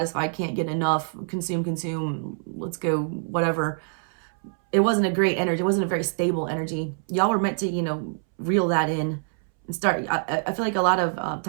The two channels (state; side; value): silent; left; 61 dB below the other